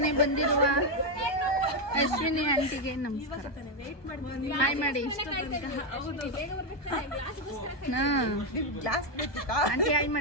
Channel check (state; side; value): late; right; 1.2 ms